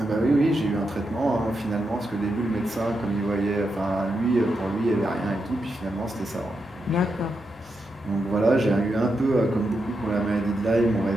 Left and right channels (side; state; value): both; normal; correlation 0.85